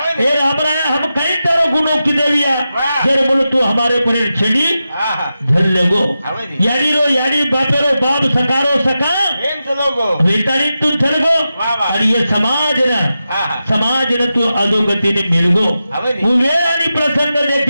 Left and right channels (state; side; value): inverted; both; correlation -0.91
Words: ए राम राया हम कहीं तारो गुनो किदे लिया जर बोल तू हमारे पर छेड़ी झल लेगो यानी रो यानी बापेरो बाप सकारो सका एम चलोगो वेतानी तू चलगो और ये समाज ने तू अधोगति ने मिलगो उवेरानी प्रसंग